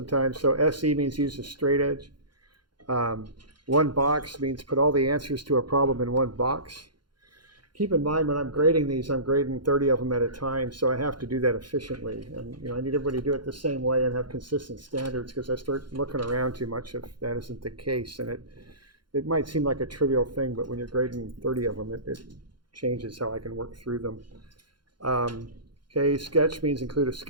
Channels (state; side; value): late; left; 0.71 ms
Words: So SE means use a straight edge. One box means put all the answers to a problem in one box. Keep in mind when I'm grading these, I'm grading 30 of them at a time, so I have to do that efficiently. And I need everybody to do it the same way and have consistent standards, because I start looking around too much if that isn't the case. And it might seem like a trivial thing, but when you're grading 30 of them, it changes how I can work through them. Okay, sketch means include a